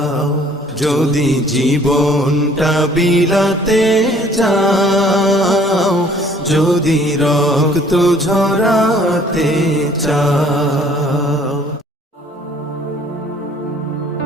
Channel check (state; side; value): normal; both; correlation 0.57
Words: যদি জীবনটা বিলাতে চাও, যদি রক্ত ঝরাতে চাও।